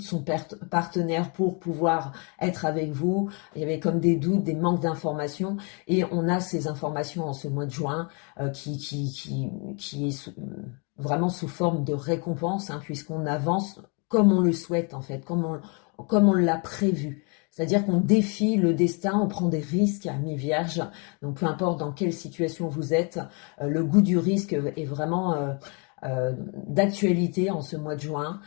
son partenaire pour pouvoir être avec vous. Il y avait comme des doutes, des manques d'informations. Et on a ces informations en ce mois de juin qui est vraiment sous forme de récompense, hein, puisqu'on avance comme on le souhaite en fait, comme on l'a prévu. C'est-à-dire qu'on défie le destin, on prend des risques à mi-vierge. Donc peu importe dans quelle situation vous êtes, le goût du risque est vraiment d'actualité en ce mois de juin.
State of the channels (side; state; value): right; quieter; 34.4 dB